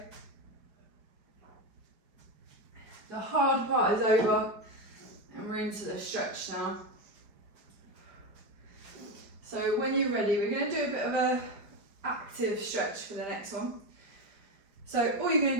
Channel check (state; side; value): late; left; 4.8 ms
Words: The hard part is over and we're into the stretch now. So when you're ready, we're going to do a bit of a active stretch for the next one. So all you're